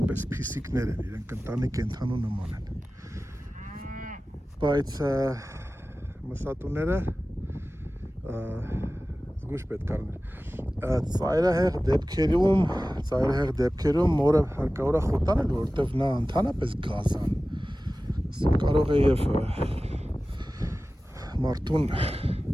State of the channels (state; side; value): normal; both; correlation 0.96